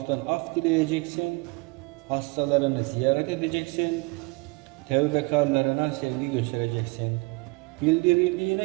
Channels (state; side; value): quieter; left; 27.3 dB